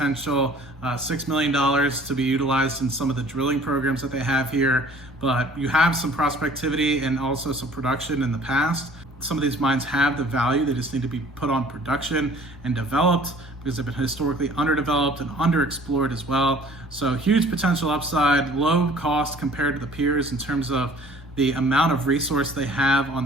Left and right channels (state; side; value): normal; both; correlation 0.52